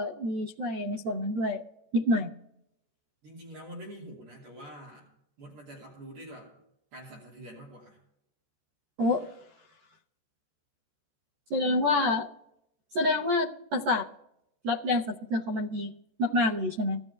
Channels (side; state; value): left; late; 14 ms